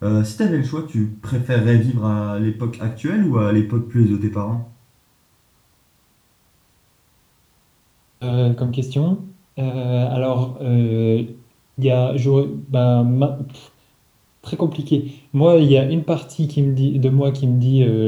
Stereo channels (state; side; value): identical; both; correlation 1.00